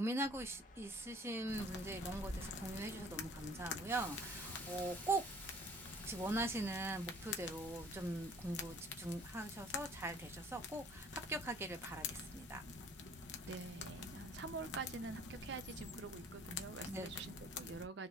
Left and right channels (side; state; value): both; normal; correlation 0.54